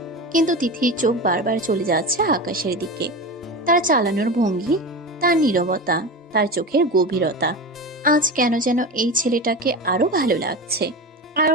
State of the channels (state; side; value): normal; both; correlation 0.26